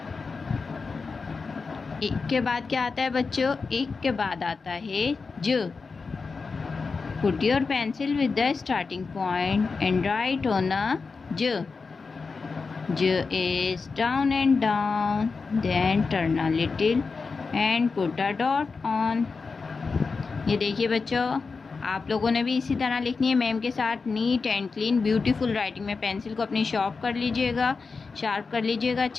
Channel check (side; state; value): right; quieter; 4.6 dB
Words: एक के बाद क्या आता है बच्चों? एक के बाद आता है ज। Put your pencil with the starting point and write on a j। J is down and down, then turn a little and put a dot on। ये देखिए बच्चों, आप लोगों ने भी इसी तरह लिखनी है मैम के साथ, neat and clean beautiful writing में। पेंसिल को अपनी शार्प कर लीजिएगा